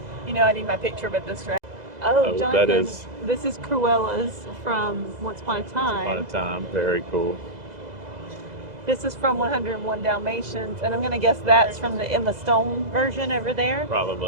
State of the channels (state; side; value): late; left; 2.0 ms